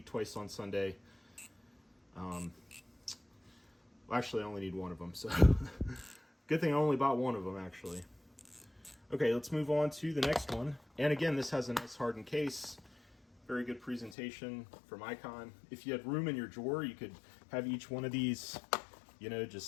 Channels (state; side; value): drops out; right; at 14.2 s